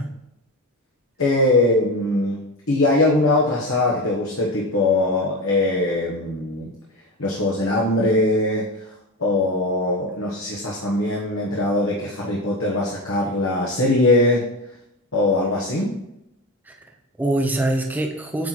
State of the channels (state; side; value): normal; both; correlation 0.23